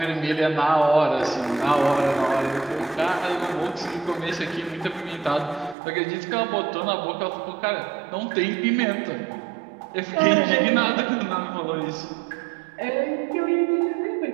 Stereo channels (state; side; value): drops out; left; at 5.8 s